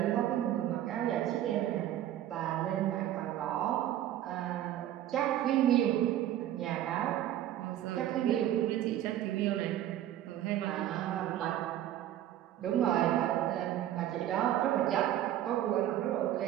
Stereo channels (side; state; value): left; quieter; 12.3 dB